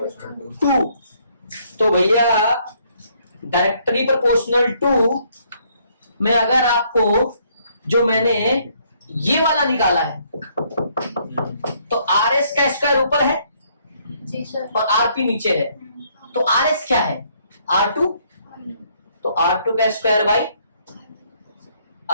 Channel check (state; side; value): inverted; both; correlation -0.68